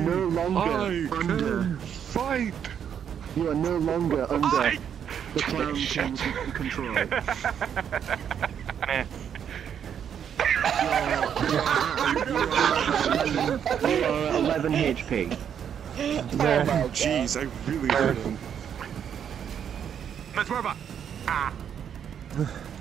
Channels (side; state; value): left; quieter; 8.5 dB